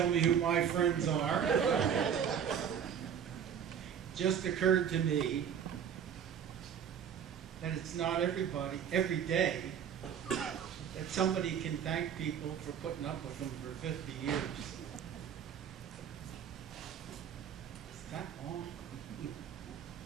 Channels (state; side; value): quieter; left; 8.2 dB